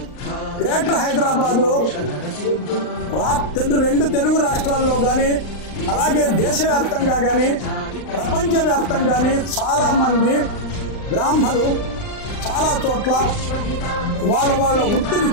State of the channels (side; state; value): right; late; 39 ms